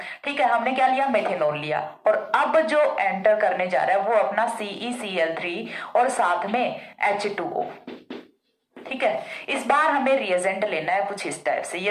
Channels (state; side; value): identical; both; correlation 1.00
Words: ठीक है। हमने क्या लिया, मेथेनॉल लिया, और अब जो एंटर करने जा रहा है वो अपना CeCl3 और साथ में H2O। ठीक है, इस बार हमें रिएजेंट लेना है कुछ इस टाइप से।